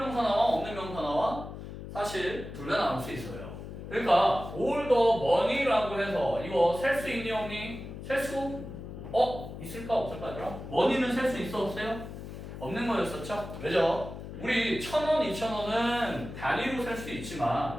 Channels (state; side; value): noise; left; hum, 10 dB below the sound